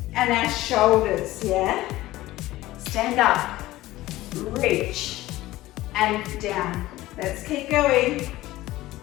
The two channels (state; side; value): quieter; right; 16.9 dB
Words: and our shoulders, yeah? Stand up, reach, and down. Let's keep going.